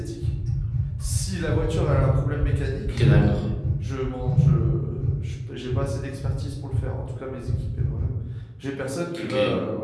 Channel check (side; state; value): both; identical; correlation 1.00